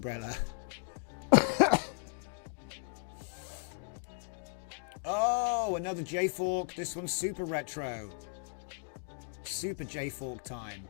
Oh, another J-Fork. This one's super retro. Super J-Fork time.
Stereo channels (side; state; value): right; silent; 54 dB below the other